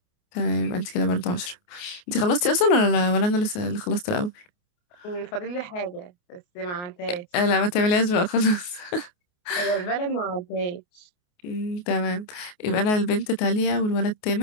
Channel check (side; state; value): right; late; 28 ms